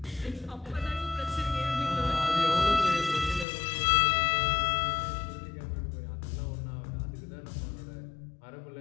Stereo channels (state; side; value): drops out; right; at 3.5 s